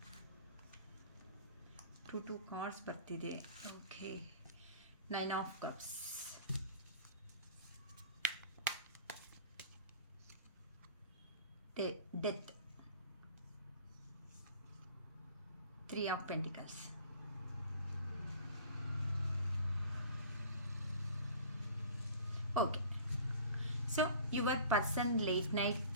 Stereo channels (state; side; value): inverted; both; correlation -0.43